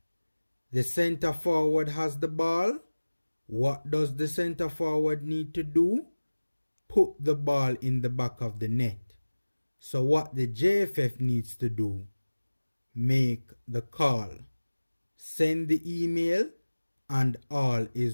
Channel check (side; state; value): both; inverted; correlation -1.00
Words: The center forward has the ball. What does the center forward need to do? Put the ball in the back of the net. So what the JFF needs to do, make the call, send the email, and all